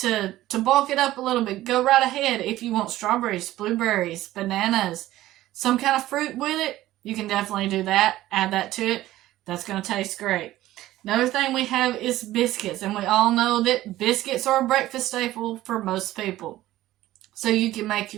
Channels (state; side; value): quieter; left; 15.3 dB